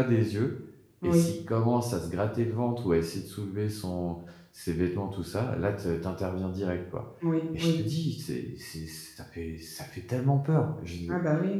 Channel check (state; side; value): identical; both; correlation 1.00